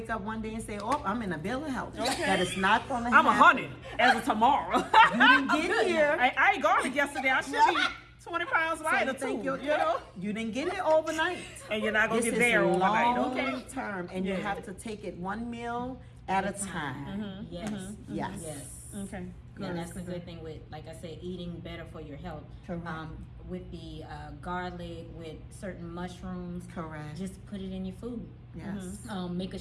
up one day and say, oh, I'm in a bill of health. Okay. That is not going to I'm happen. 100 as of tomorrow. You didn't get here. I ate garlic yesterday. I should be 20 pounds So lighter you think too. you're- You know. You didn't get it overnight. And you're not gonna This get is there overnight. long Okay. term, and you Yeah. have to take it one meal at a time. Yes. Yes. Yes. Okay. And that's the good thing with, like I said, eating better for your health. Correct. With the garlic, with certain mushrooms, Correct. just put it in your food. Yes. Make a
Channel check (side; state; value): both; identical; correlation 1.00